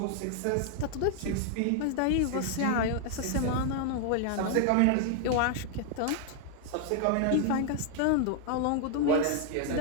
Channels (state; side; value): different; both; correlation 0.00